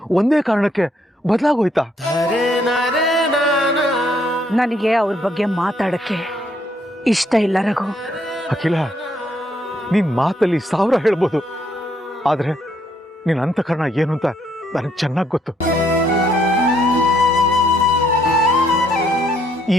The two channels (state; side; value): normal; both; correlation 0.71